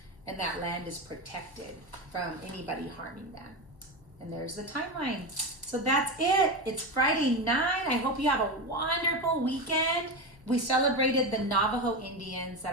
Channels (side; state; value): left; noise; hum, 27 dB below the sound